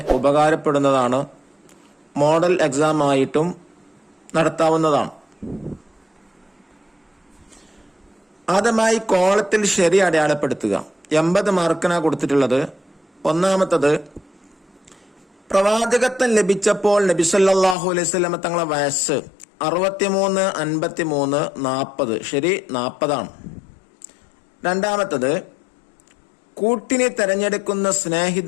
ഉപകാരപ്പെടുന്നതാണ്. മോഡൽ എക്സാം ആയിട്ടും നടത്താവുന്നതാണ്. ആദ്യമായി കോളത്തിൽ ശരി അടയാളപ്പെടുത്തുക. 80 മാർക്കിനാണ് കൊടുത്തിട്ടുള്ളത്. ഒന്നാമത്തത്, പ്രവാചകത്വം ലഭിച്ചപ്പോൾ നബി സല്ലല്ലാഹു അലൈഹി വസല്ലം തങ്ങളെ വയസ്സ് 63, 53, 40. ശരി, 40 ആണ്. രണ്ടാമത്തത്, കൂട്ടിനെ തെരഞ്ഞെടുക്കുന്ന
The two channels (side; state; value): right; drops out; at 17.8 s